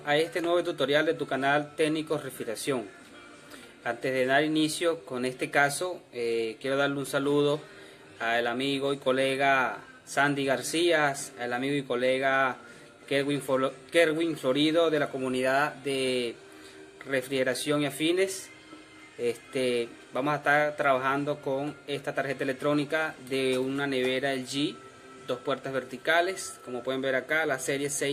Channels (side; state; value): both; identical; correlation 1.00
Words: a este nuevo tutorial de tu canal Técnicos Refrigeración. Antes de dar inicio con este caso, quiero darle un saludo al amigo y colega Sandy García, al amigo y colega Kerwin Florido de la comunidad de refrigeración y afines. Vamos a estar trabajando con esta tarjeta electrónica de una nevera LG, 2 puertas verticales, como pueden ver acá, la serie